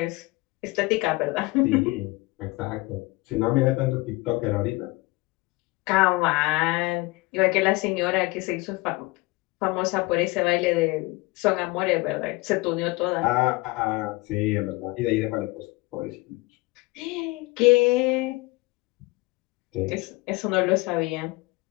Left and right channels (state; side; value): quieter; right; 23.3 dB